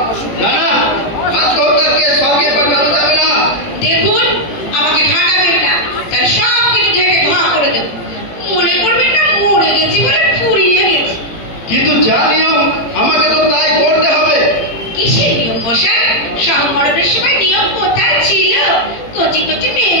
না না, আত্মহত্যার কেস স্বর্গে পাঠানো যাবে না। দেখুন আমাকে ঠাকাবেন না, তাহলে সব কিছু ঢেকে ধোয়া করে দেবো। মনে করবেন না মরে গেছি বলে ফুরিয়ে গেছি। কিন্তু যা নিয়ম আমাকে তো তাই করতে হবে। কিসের নিয়ম মশাই? সংকরণের সময় নিয়ম কোথায় ছিল? কচি কচি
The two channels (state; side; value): late; right; 17 ms